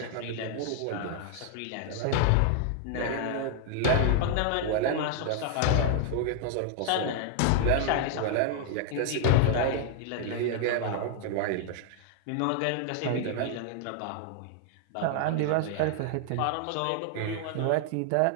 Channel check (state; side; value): different; both; correlation 0.00